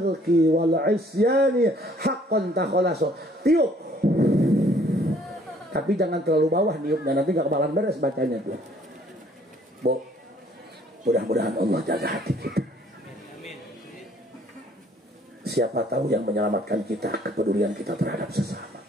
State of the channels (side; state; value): both; normal; correlation 0.60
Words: wal isyani haqqan takhallasu. Tiup. Tapi jangan terlalu bawah niupnya, nanti gak kebalan beres bacanya tuh. Bu, mudah-mudahan Allah jaga hati kita. Siapa tahu yang menyelamatkan kita kepedulian kita terhadap sesama.